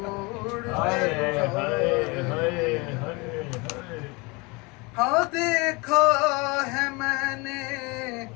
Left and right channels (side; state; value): right; quieter; 27.1 dB